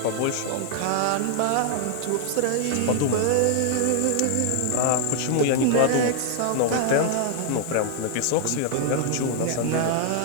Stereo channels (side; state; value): both; different; correlation -0.01